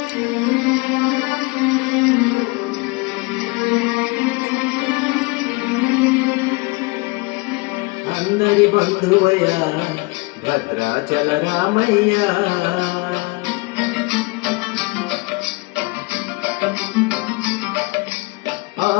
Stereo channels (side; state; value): right; quieter; 26.9 dB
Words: అందరి బంధువయ్య భద్రాచల రామయ్య